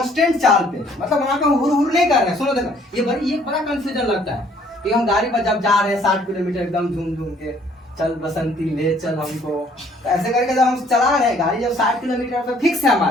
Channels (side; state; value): both; normal; correlation 0.61